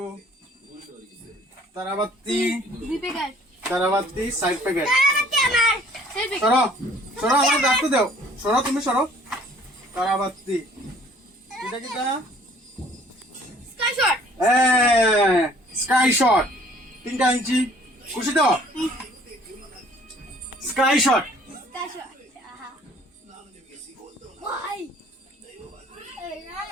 তারাবাতি 6 প্যাকেট সরো আমার রাখতে দাও তুমি সরো তারাবাতি এটা কি তা স্কাই শট 3টা ইঞ্চি খুশি তো স্কাই শট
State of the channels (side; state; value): both; normal; correlation 0.56